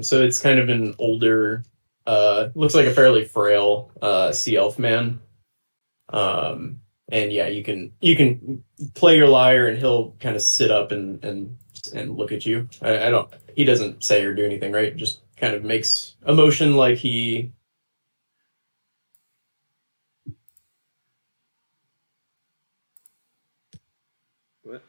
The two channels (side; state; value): both; inverted; correlation -1.00